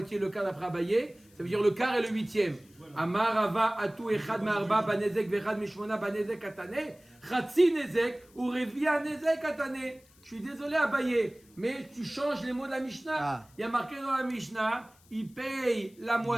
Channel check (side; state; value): left; noise; hiss, 29 dB below the sound